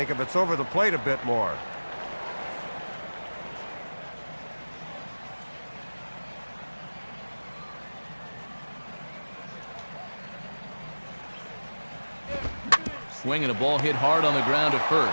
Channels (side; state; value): both; inverted; correlation -1.00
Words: if it's over the plate a bit more. Swinging a ball hit hard on the ground to